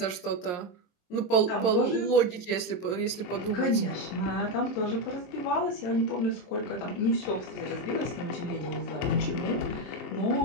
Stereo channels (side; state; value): right; late; 22 ms